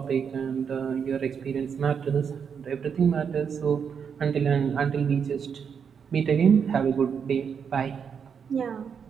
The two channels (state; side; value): quieter; left; 6.9 dB